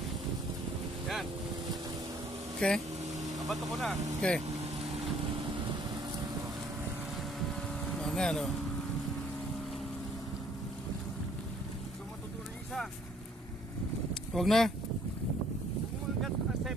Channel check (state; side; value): normal; both; correlation 0.61